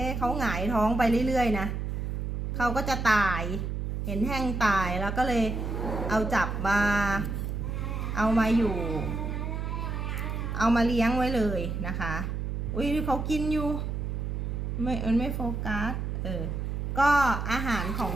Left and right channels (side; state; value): right; noise; hum, 3 dB below the sound